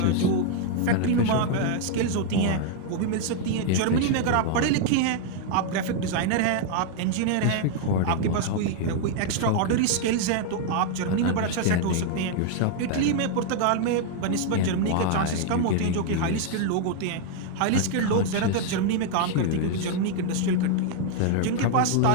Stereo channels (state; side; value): different; both; correlation 0.00